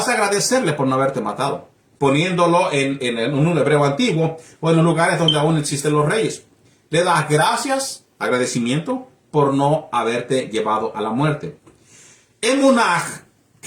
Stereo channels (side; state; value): both; identical; correlation 1.00